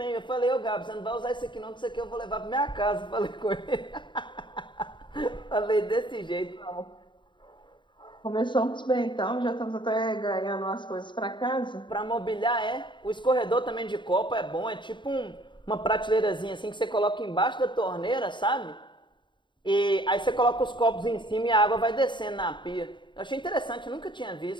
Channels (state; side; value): late; right; 0.23 ms